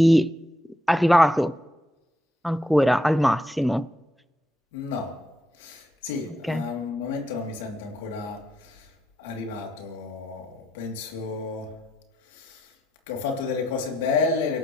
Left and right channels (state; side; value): normal; both; correlation 0.80